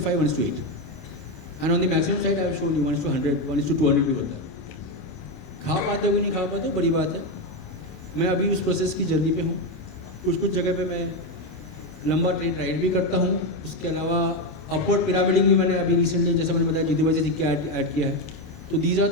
1:8। And on the maximum side I have shown you 1:100, 1:200 भी होता है। खा पाते हो नहीं खा पाते बड़ी बात है। मैं अभी उस प्रोसेस की जल्दी पे हूँ। कुछ जगह पे मैं लंबा ट्रेड राइड भी करता हूँ। उसके अलावा अपवर्ड पिरामिडिंग भी मैंने अभी रिसेंटली, जैसा मैंने बताया, जीतू भाई से सीख के ऐड किया है। तो these are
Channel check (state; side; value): late; right; 27 ms